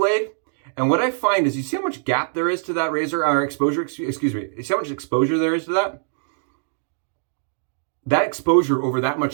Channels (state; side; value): silent; left; digital silence